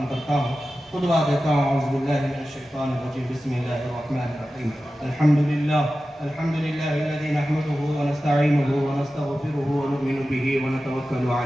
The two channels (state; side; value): normal; both; correlation 0.94